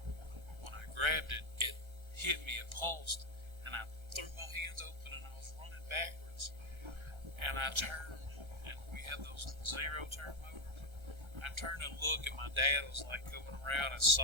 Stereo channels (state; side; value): late; left; 1.3 ms